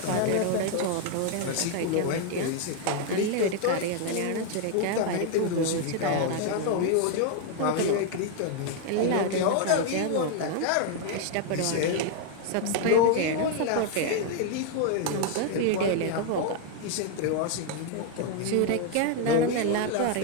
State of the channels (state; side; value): different; both; correlation 0.00